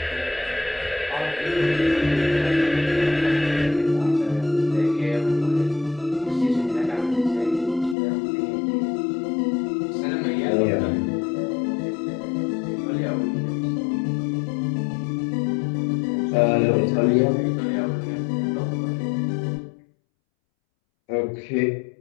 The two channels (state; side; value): drops out; right; at 8.0 s